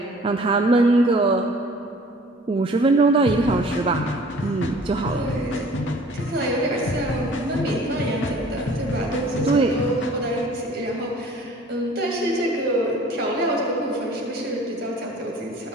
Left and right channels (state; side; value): normal; both; correlation 0.50